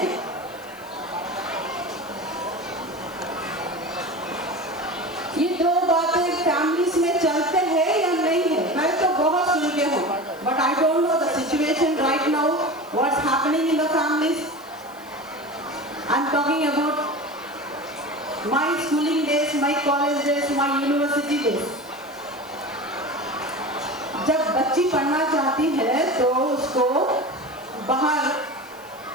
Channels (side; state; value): right; noise; hiss, 24 dB below the sound